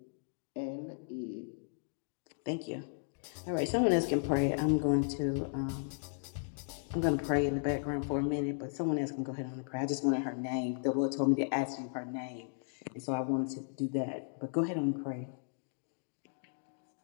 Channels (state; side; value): silent; right; digital silence